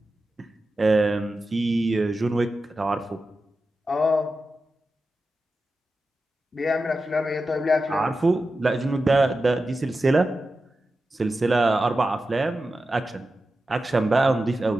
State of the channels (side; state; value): both; normal; correlation 0.92